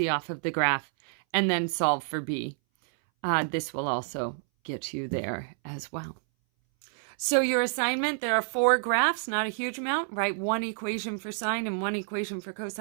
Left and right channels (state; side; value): silent; left; 59 dB below the other